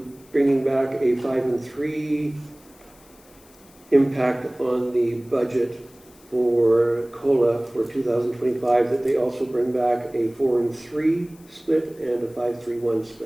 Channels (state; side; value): noise; left; hiss, 27 dB below the sound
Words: bringing back a 5 and 3 impact on the budget for COLA for 2025, that they also bring back a 4 and 3 split and a 5-3-1